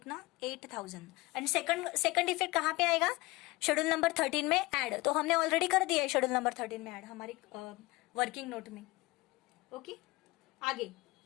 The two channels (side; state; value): right; quieter; 21.9 dB